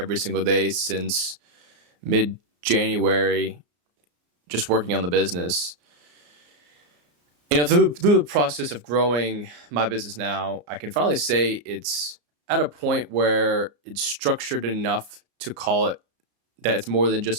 single day since mid January, just working on the business. Through the process of growing my business now, I can finally say it's at a point where it's structured enough to call it that it's more than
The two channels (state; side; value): late; left; 34 ms